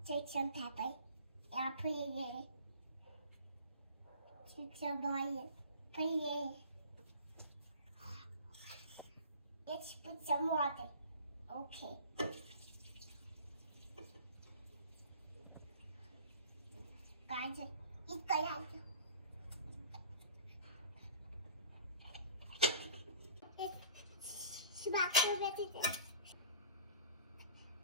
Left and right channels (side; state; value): both; inverted; correlation -0.44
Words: Take some pepper. I put it in. Take some oil. Put it in. Let's put some water. Okay. Guys, 이거야.